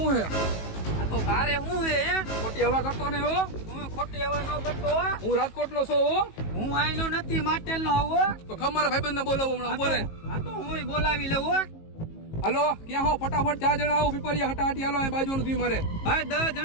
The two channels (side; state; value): right; late; 19 ms